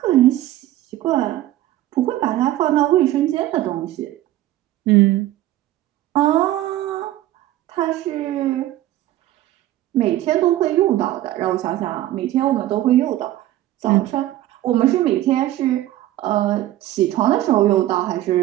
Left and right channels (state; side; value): quieter; left; 14.5 dB